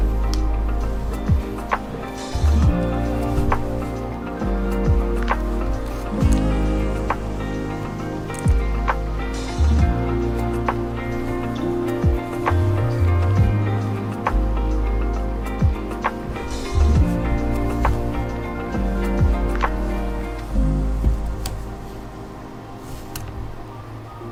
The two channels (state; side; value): identical; both; correlation 1.00